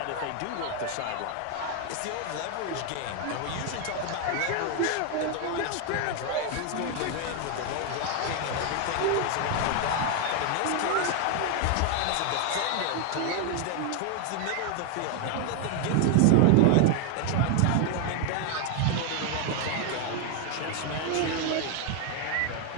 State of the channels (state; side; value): different; both; correlation 0.01